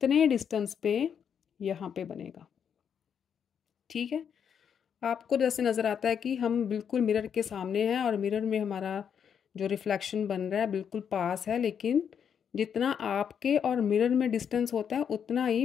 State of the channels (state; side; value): quieter; right; 7.8 dB